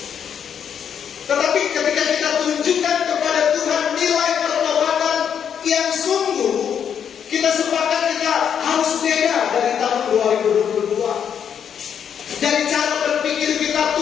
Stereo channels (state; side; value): quieter; right; 8.1 dB